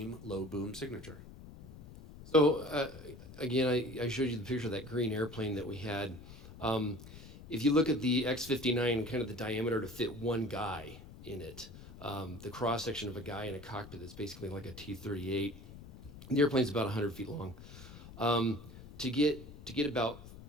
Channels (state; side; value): noise; left; rumble, 16 dB below the sound